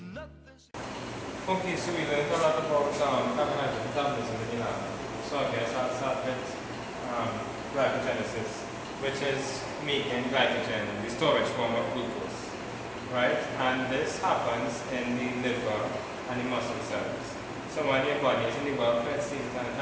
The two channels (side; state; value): both; identical; correlation 1.00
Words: nothing's... Okay, so we learned a lot about carbohydrate metabolism in lab. So I guess I'll start with glycogenesis, which is making glycogen, the storage form of glucose, right? And this happens in the liver and the muscle cells. So when your body is in the welfare state and it